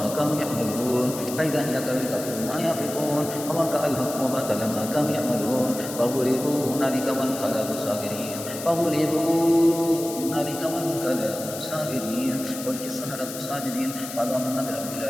كانوا يعملون فإذا هي تلقف ما يأفكون فوقع الحق وبطل ما كانوا يعملون فغلبوا هنالك وانقلبوا صاغرين فغلبوا هنالك وانقلبوا صاغرين والقي السحرة ساجدين قالوا آمنا برب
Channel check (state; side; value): noise; left; hiss, 10 dB below the sound